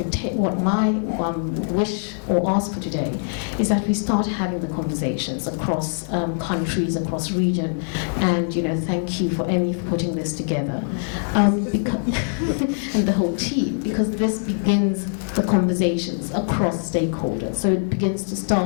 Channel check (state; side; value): silent; right; digital silence